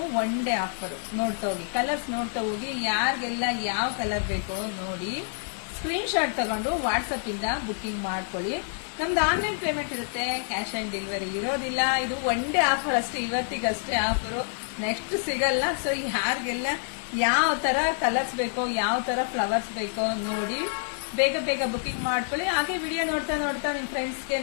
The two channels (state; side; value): silent; right; 60 dB below the other